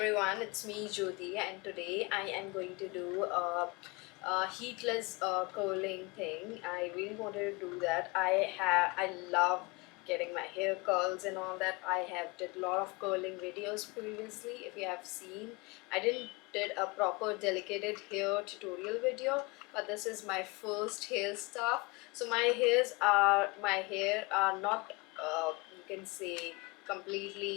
it's me Jyoti, and today I am going to do a heatless curling thing. I really wanted to do that. I love getting my hair curls and all that. I have did a lot of curling videos previously. If you have seen, I didn't did a proper delicate hair tutorial video, but this is my first hair stuff. So my hair are not you can say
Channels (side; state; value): right; quieter; 26.8 dB